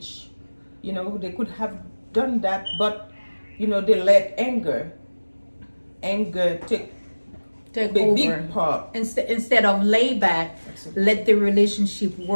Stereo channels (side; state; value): both; inverted; correlation -1.00